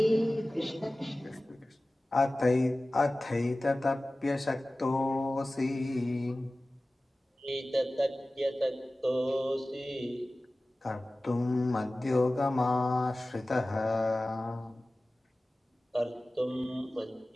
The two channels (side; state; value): both; normal; correlation 0.97